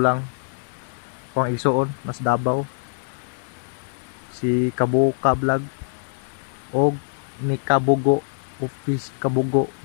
ko ang igsuon mas Davao si Kabuka Vlog og ni Kabugo Office Kabugo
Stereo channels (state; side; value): silent; right; digital silence